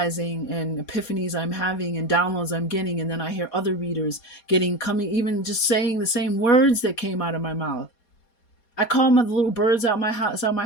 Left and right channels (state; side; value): late; right; 4.2 ms